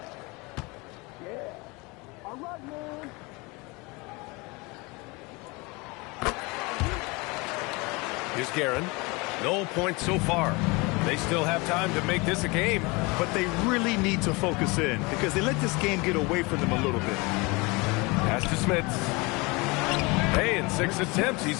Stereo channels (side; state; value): right; quieter; 26.2 dB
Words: Here's Guerin. No points so far. They still have time to make this a game. But they really need to focus in because they let this game get away from them a little bit. Pass to Smith. Hey, in 6 attempts,